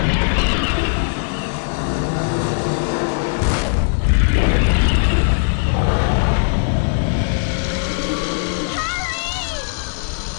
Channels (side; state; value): right; silent; 57 dB below the other